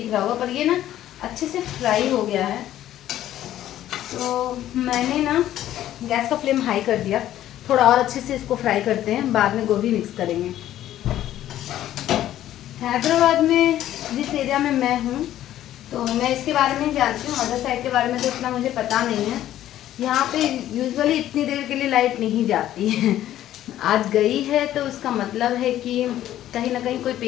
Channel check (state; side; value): quieter; right; 12.7 dB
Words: रहा होगा, पर ये ना अच्छे से फ्राई हो गया है। तो मैंने ना गैस का फ्लेम हाई कर दिया, थोड़ा और अच्छे से इसको फ्राई करते हैं, बाद में गोभी मिक्स करेंगे। हैदराबाद में जिस एरिया में मैं हूँ तो मैं इसके बारे में जानती हूँ, अदर साइड के बारे में तो इतना मुझे पता नहीं है। यहाँ पे यूजुअली इतनी देर के लिए लाइट नहीं जाती है। आज गई है तो उसका मतलब है कि कहीं ना कहीं कोई